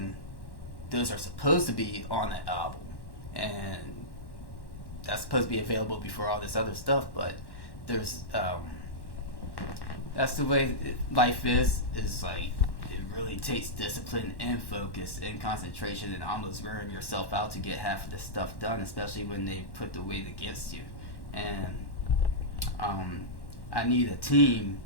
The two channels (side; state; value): right; late; 1.1 ms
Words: those are supposed to be on the album, and that's supposed to be available before all this other stuff. But there's that's the way life is like, it really takes discipline and focus and concentration and almost wearing yourself out to get half of this stuff done, especially when they put the weight against you. And I need a